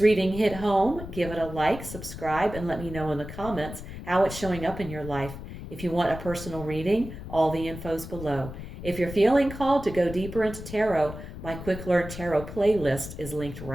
reading hit home, give it a like, subscribe, and let me know in the comments how it's showing up in your life. If you want a personal reading, all the info's below. If you're feeling called to go deeper into tarot, my Quick Learn Tarot playlist is linked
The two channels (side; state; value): left; noise; rumble, 11 dB below the sound